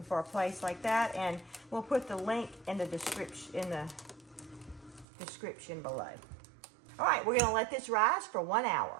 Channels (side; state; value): left; drops out; at 5.1 s